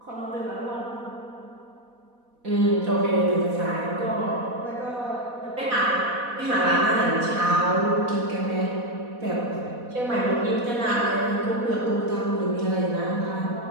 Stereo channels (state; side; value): late; left; 4.1 ms